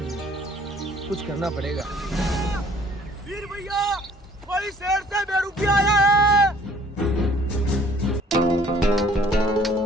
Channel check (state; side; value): normal; both; correlation 0.56